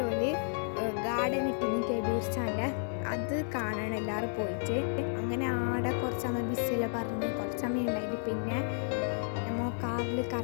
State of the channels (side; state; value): right; silent; digital silence